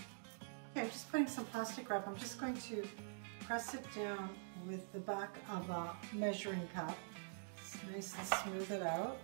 Okay, I'm just putting some plastic wrap. I'm just going to press it down with the back of a measuring cup. Just nice and smooth it out.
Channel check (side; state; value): left; silent; digital silence